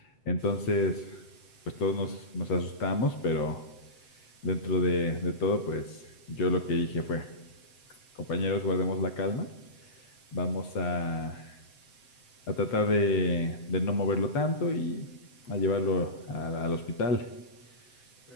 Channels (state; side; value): late; right; 7.9 ms